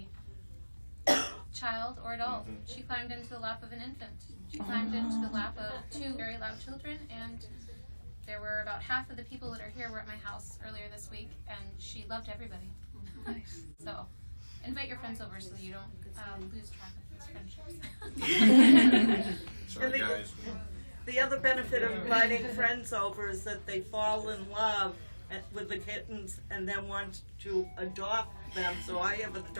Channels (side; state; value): both; inverted; correlation -1.00